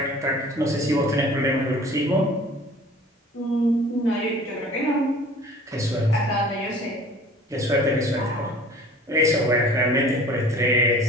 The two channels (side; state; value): both; normal; correlation 0.47